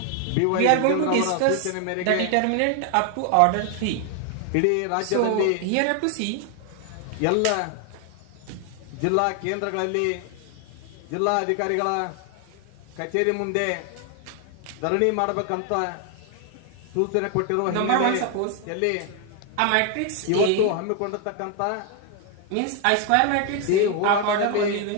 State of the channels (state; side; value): different; both; correlation 0.01